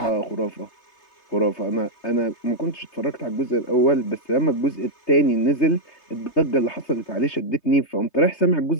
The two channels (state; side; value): late; right; 3.3 ms